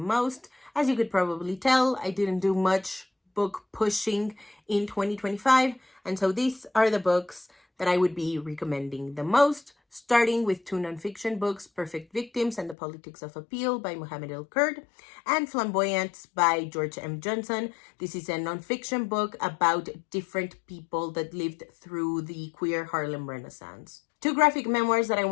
As you could probably tell, I didn't do much book pushing in 2025, and so these are the books that I would be recommending the most, starting with two nonfiction books, Perfect Victims and the Politics of Appeal by Mohammed El Kurd, and Flamboyance by George M. Johnson. This is a nonfiction book about different people that lived through the queer Harlem Renaissance. Two graphic memoirs that I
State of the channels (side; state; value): right; drops out; at 12.8 s